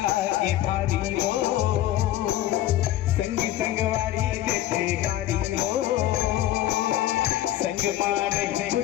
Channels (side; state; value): right; quieter; 13.6 dB